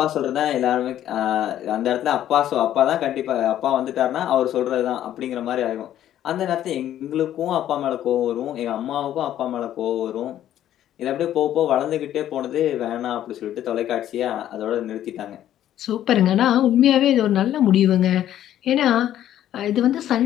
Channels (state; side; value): quieter; right; 11.7 dB